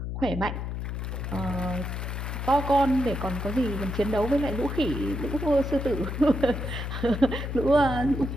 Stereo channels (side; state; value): left; noise; hum, 4 dB below the sound